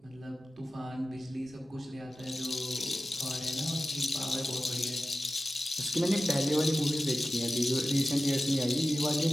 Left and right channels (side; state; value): both; normal; correlation 0.94